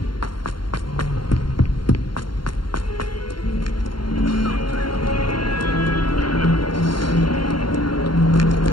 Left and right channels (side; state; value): right; late; 0.72 ms